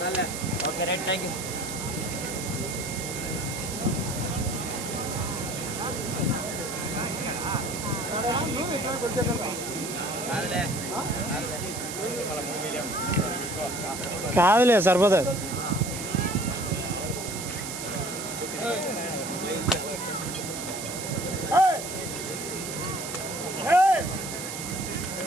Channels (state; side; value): noise; right; hiss, 7 dB below the sound